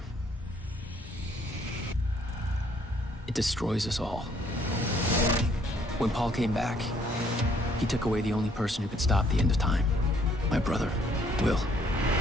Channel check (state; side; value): normal; both; correlation 0.65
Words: It destroys us all. When Paul came back, he took away the only person who could stop the end of time. My brother, Will.